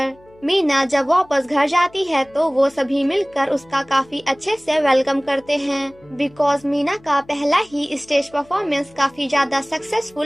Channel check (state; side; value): noise; left; hum, 28 dB below the sound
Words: मीना जब वापस घर जाती है तो वो सभी मिलकर उसका काफी अच्छे से वेलकम करते हैं बिकॉज मीना का पहला ही स्टेज परफॉर्मेंस काफी ज्यादा